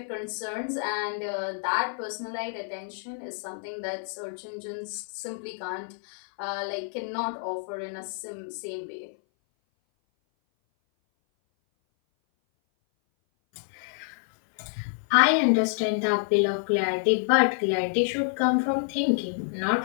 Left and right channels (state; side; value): silent; right; 57 dB below the other